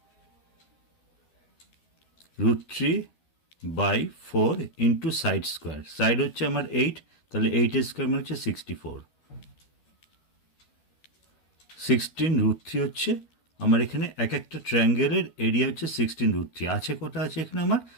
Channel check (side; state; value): right; late; 12 ms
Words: √3/4 into side square. Side হচ্ছে আমার 8, তাহলে 8 স্কোয়ার মানে হচ্ছে 64। 16 √3 হচ্ছে আমার এখানে এক একটা ট্রায়াঙ্গেলের এরিয়া হচ্ছে 16 √3। আছে কটা আছে এখানে আমার